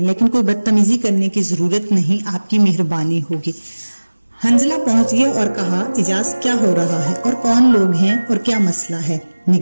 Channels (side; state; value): both; inverted; correlation -1.00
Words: लेकिन कोई बदतमीजी करने की जरूरत नहीं, आपकी मेहरबानी होगी। हंजला पहुंच गया और कहा, इजाज क्या हो रहा है और कौन लोग हैं और क्या मसला है?